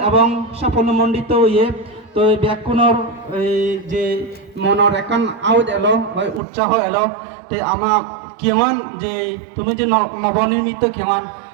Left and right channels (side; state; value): left; drops out; at 6.4 s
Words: এবং সাফল্যমণ্ডিত ইয়ে তো ব্যাকুণর যে মনের একান আউট এলো বা উৎসাহ এলো তে আমার কেমন যে তুমি যে নবনির্মিত কেমন